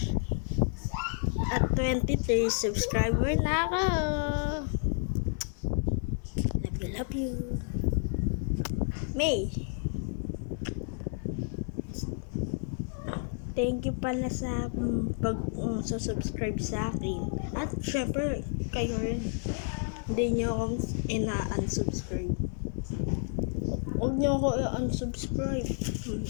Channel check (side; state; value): right; silent; 57 dB below the other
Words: At 23 subscriber na ako. Love you. May. Thank you pala sa subscribe sa akin. At syempre, kayo rin. Hindi nyo akong ina-unsubscribe. Huwag nyo ako i-unsubscribe.